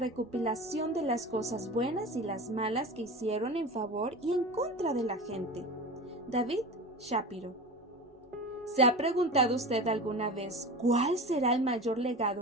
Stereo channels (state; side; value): normal; both; correlation 0.31